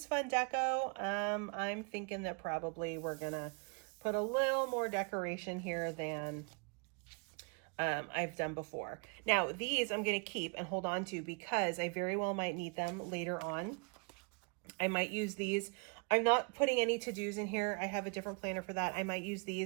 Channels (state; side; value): quieter; left; 35.9 dB